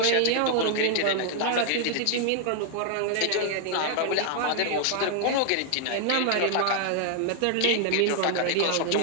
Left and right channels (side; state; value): both; different; correlation 0.00